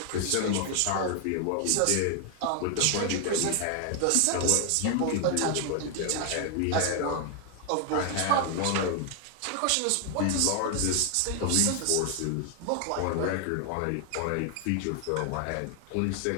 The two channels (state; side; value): different; both; correlation 0.00